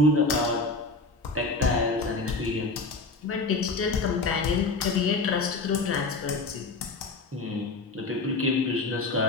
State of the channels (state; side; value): quieter; right; 3.4 dB